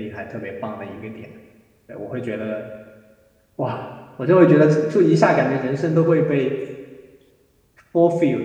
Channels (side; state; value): both; identical; correlation 1.00